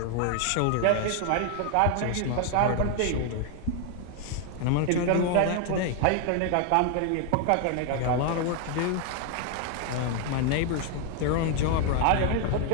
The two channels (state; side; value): different; both; correlation 0.00